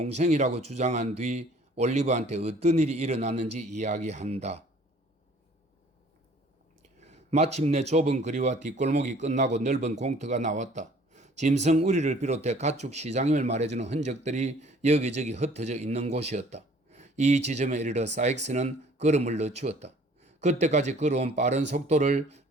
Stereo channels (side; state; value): both; normal; correlation 0.54